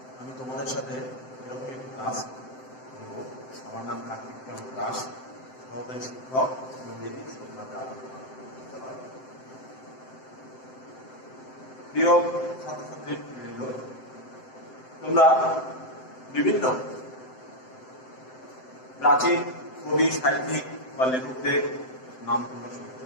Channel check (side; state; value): right; late; 7.8 ms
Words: আমি তোমাদের সাথে এরকম একটি ক্লাস করব। আমার নাম কার্তিক দাস, সহকারী শিক্ষক ইংরেজি বিদ্যালয়। প্রিয় ছাত্রছাত্রীবৃন্দ, তোমরা বিভিন্ন প্রাচীন কবি, সাহিত্যিক বা লেখকদের নাম তোমরা শুনছো।